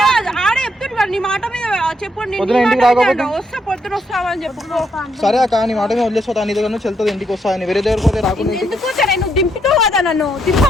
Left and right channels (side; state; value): both; normal; correlation 0.76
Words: ఆడే చెప్తున్నాడు. నీ మాట మీద చెప్పండి. పొద్దున ఇంటికి రాకపోతే వస్తా పొద్దున వస్తావని చెప్పు. సరే అక్క నీ మాట మీద వదిలేసిపోతా. నీ దగ్గర నుంచి వెళ్తుంది ఇంటికి వస్తా. వేరే దగ్గర పోతే రాకుండా ఎందుకు నువ్వు దింపుతావు కదా నన్ను.